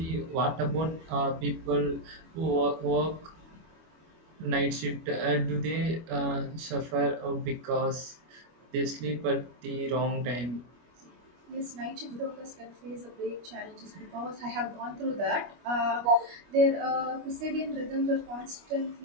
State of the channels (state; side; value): late; left; 25 ms